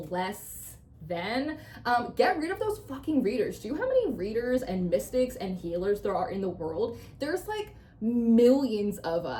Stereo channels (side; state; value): both; identical; correlation 1.00